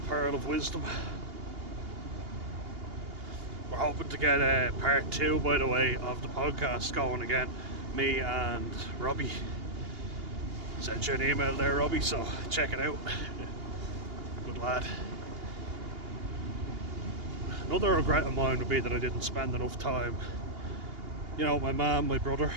pearl of wisdom. We're hoping to get part 2, by the way, of the podcast going again. Me and Robbie. Sent you an email there, Robbie, so check it out. Good lad. Another regret of mine would be that I didn't spend enough time, you know, my mum, my brother,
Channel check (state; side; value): late; left; 2.8 ms